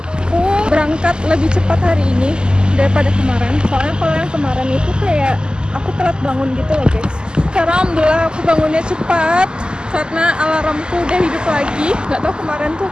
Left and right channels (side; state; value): left; late; 0.047 ms